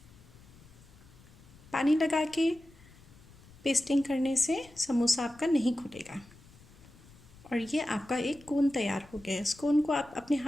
पानी लगा के पेस्टिंग करने से समोसा आपका नहीं खुलेगा। और ये आपका एक कोन तैयार हो गया है। इस कोन को आप अपने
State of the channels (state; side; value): noise; left; rumble, 23 dB below the sound